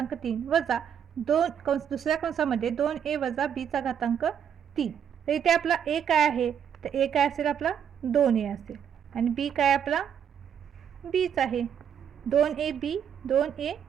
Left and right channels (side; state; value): left; quieter; 8.5 dB